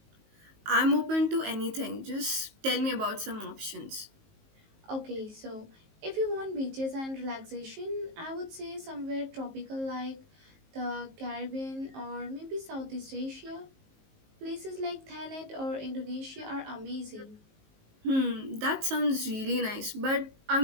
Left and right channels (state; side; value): late; left; 19 ms